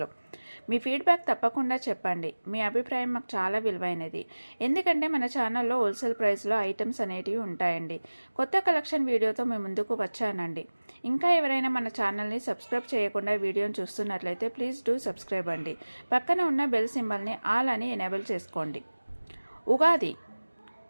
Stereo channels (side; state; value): both; inverted; correlation -1.00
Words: మీ ఫీడ్బ్యాక్ తప్పకుండా చెప్పండి. మీ అభిప్రాయం మాకు చాలా విలువైనది. ఎందుకంటే మన ఛానల్లో హోల్సేల్ ప్రైస్లో ఐటమ్స్ అనేటివి ఉంటాయండి. కొత్త కలెక్షన్ వీడియోతో మేము ముందుకు వచ్చానండి. ఇంకా ఎవరైనా మన ఛానల్ని సబ్స్క్రైబ్ చేయకుండా వీడియోని చూస్తున్నట్లయితే ప్లీజ్ డూ సబ్స్క్రైబ్ అండి. పక్కన ఉన్న బెల్ సింబల్ని ఆల్ అని ఎనేబుల్ చేసుకోండి. ఉగాది